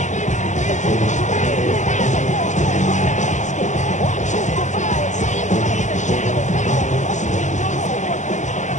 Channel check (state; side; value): late; right; 0.35 ms